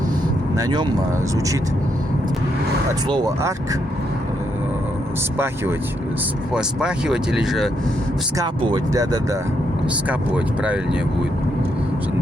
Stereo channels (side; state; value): both; normal; correlation 0.78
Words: на нем звучит от слова арк спахивать, спахивать или же вскапывать, да-да-да, вскапывать правильнее будет.